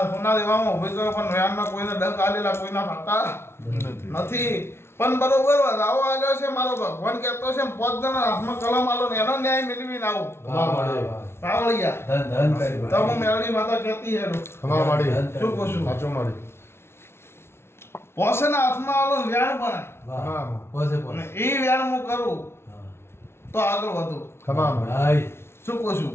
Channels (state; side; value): late; right; 0.12 ms